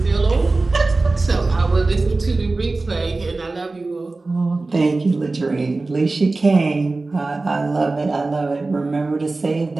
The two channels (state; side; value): quieter; left; 3.4 dB